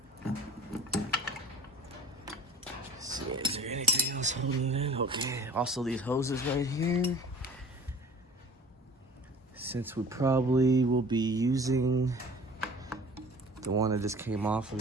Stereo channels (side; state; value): both; normal; correlation 0.46